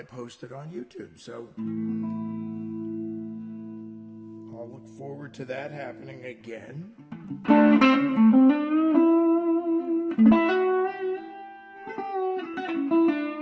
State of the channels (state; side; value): identical; both; correlation 1.00